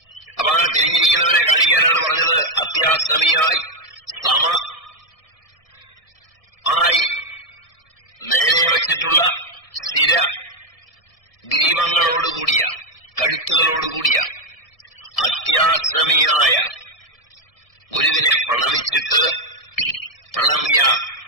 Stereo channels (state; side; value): late; right; 1.7 ms